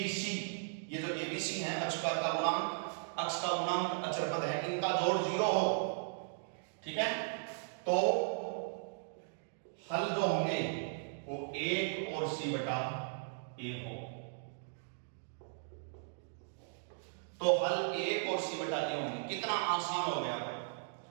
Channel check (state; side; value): silent; left; digital silence